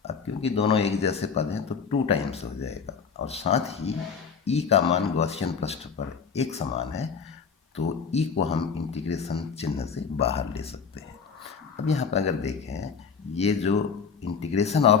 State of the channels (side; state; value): right; quieter; 6.1 dB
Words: अब क्योंकि दोनों एक जैसे पद हैं तो 2 टाइम्स हो जाएगा, और साथ ही ई का मान गॉसियन पृष्ठ पर एक समान है, तो ई को हम इंटीग्रेशन चिन्ह से बाहर ले सकते हैं। अब यहाँ पर अगर देखें, ये जो इंटीग्रेशन